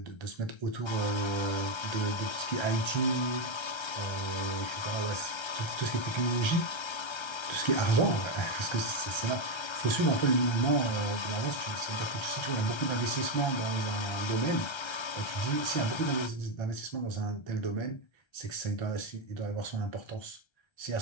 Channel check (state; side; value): late; right; 1.3 ms